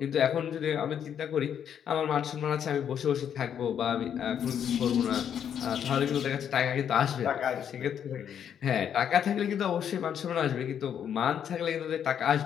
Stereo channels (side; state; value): right; quieter; 8.8 dB